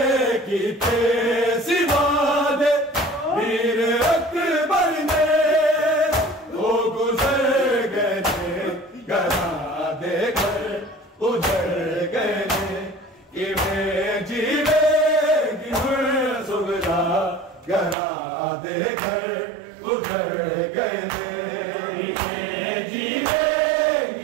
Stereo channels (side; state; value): left; drops out; at 17.9 s